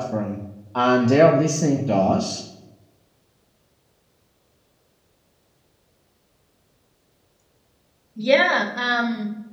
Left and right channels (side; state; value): both; identical; correlation 1.00